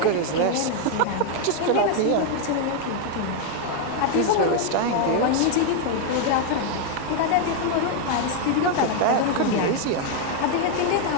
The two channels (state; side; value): different; both; correlation 0.00